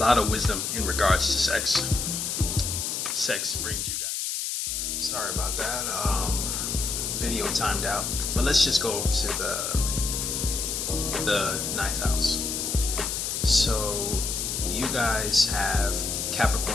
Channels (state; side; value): noise; left; hiss, 2 dB below the sound